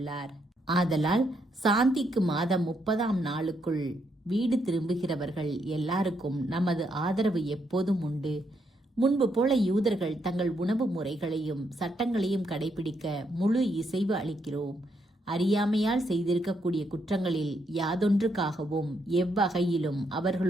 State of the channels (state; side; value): normal; both; correlation 0.76